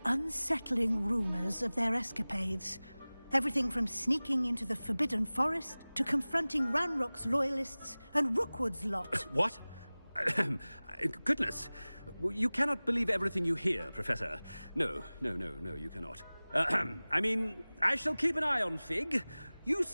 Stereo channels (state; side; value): inverted; both; correlation -0.99